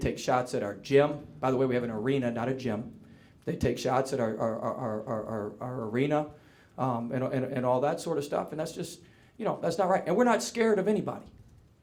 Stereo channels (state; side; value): identical; both; correlation 1.00